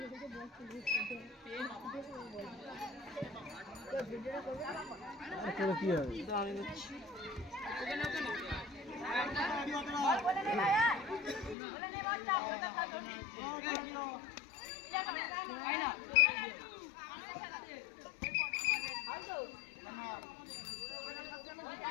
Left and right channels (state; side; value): drops out; right; at 11.6 s